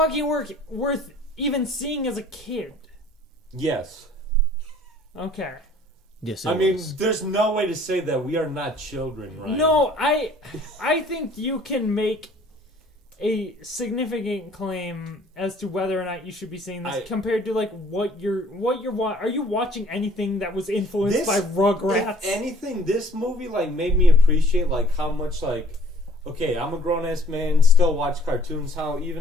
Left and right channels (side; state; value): both; normal; correlation 0.55